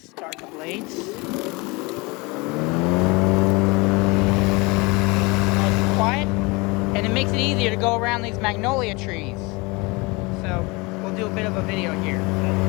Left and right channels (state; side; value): quieter; right; 25.8 dB